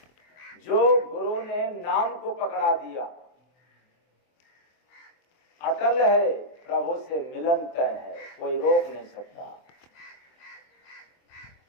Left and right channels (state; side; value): late; right; 24 ms